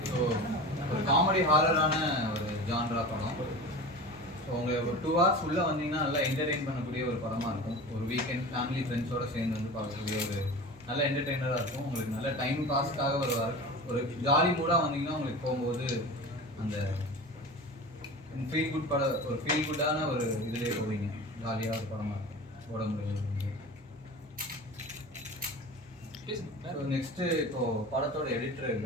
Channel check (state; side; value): normal; both; correlation 0.33